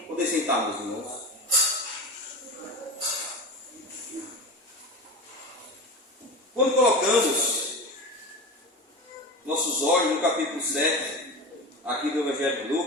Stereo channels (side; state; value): both; normal; correlation 0.27